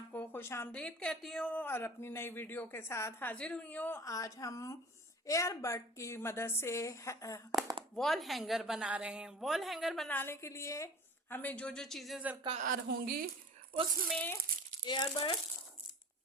खुश आमदीद कहती हूँ और अपनी नई वीडियो के साथ हाजिर हुई हूँ। आज हम एयरबड की मदद से वॉल हैंगर बना रहे हैं। वॉल हैंगर बनाने के लिए हमें जो जो चीज़ें दरकार होंगी उसमें एयरबड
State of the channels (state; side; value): normal; both; correlation 0.41